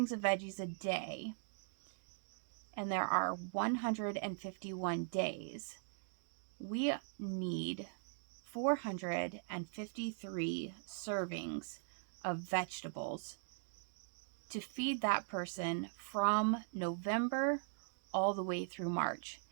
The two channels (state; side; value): silent; left; digital silence